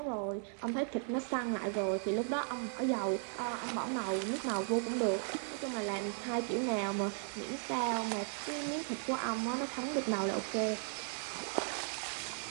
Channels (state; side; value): silent; left; 53 dB below the other